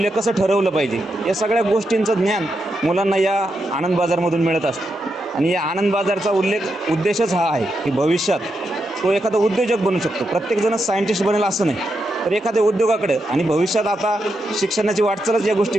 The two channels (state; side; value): normal; both; correlation 0.84